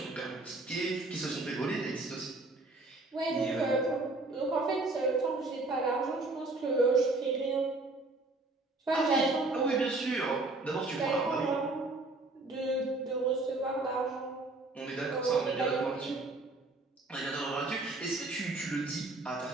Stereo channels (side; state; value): left; quieter; 3.1 dB